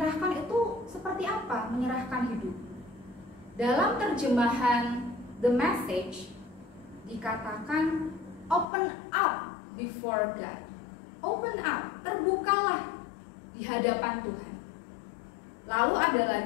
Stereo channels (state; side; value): drops out; right; at 8.7 s